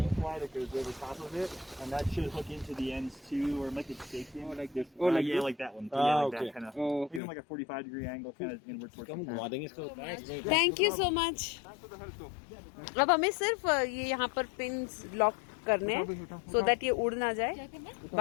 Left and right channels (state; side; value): drops out; right; at 7.2 s